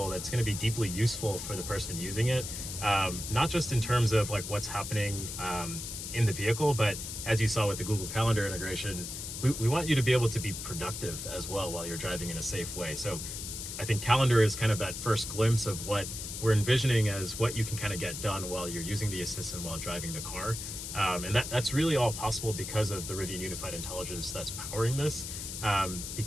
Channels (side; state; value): left; noise; hiss, 7 dB below the sound